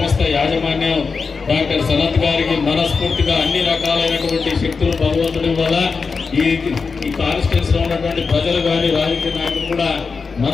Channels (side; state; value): right; quieter; 4.9 dB